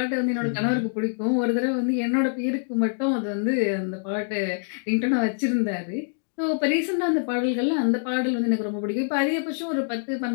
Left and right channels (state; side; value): silent; right; digital silence